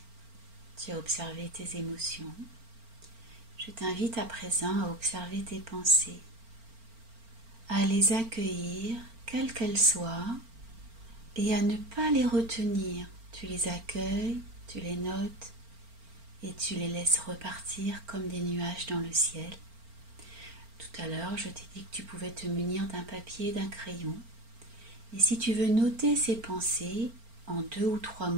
tu as observé tes émotions. Je t'invite à présent à observer tes pensées, à les accueillir, quelles qu'elles soient, et à ne pas les retenir. Tu les accueilles, tu les notes et tu les laisses repartir comme des nuages dans le ciel. Tout à l'heure, je t'ai dit que tu pouvais te munir d'un papier et d'un crayon. Et si tu veux noter ces pensées en 2 ou 3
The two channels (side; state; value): left; late; 4.4 ms